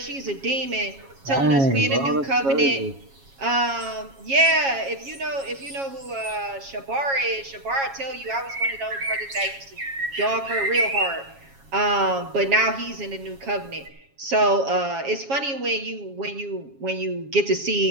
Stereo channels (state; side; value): late; left; 7.3 ms